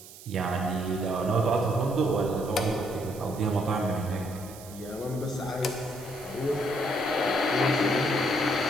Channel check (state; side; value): noise; right; hiss, 18 dB below the sound